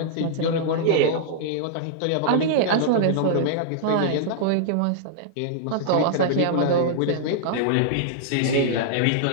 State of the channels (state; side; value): different; both; correlation -0.01